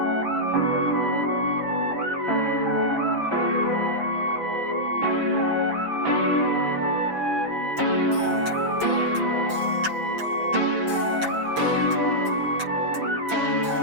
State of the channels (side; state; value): left; late; 6.0 ms